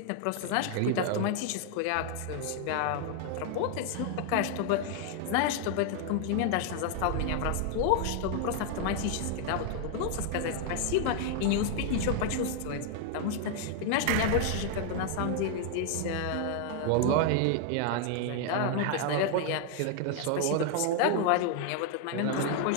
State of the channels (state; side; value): different; both; correlation 0.00